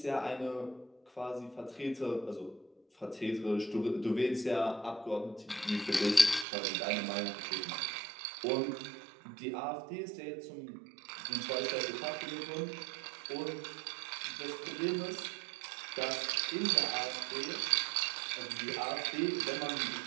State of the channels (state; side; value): drops out; left; at 6.5 s